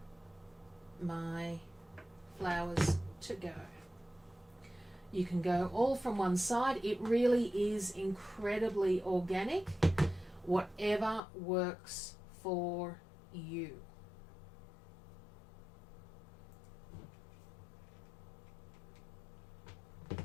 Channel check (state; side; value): drops out; right; at 11.2 s